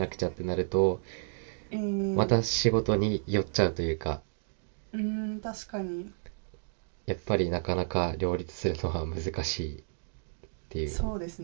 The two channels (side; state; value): left; silent; digital silence